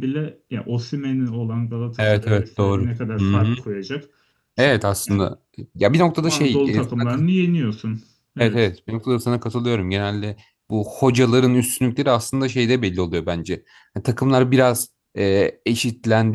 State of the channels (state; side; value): identical; both; correlation 1.00